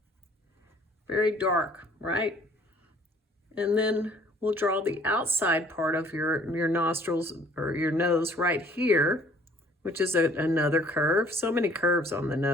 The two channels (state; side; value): normal; both; correlation 0.57